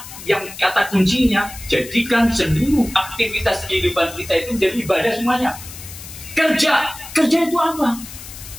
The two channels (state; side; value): noise; left; hiss, 14 dB below the sound